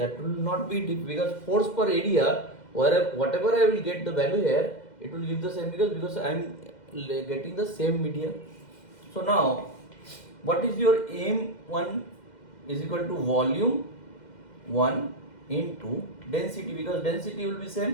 will not be because force per area, whatever I will get the value here, it will give the same because I am getting the same media. So now what is your M1 is equal to volume 1 into density, because density will be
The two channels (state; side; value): late; right; 2.1 ms